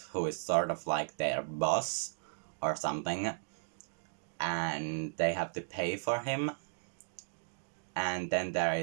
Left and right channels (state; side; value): silent; left; digital silence